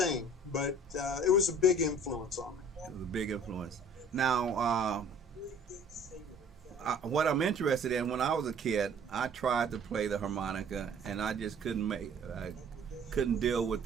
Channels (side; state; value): both; normal; correlation 0.52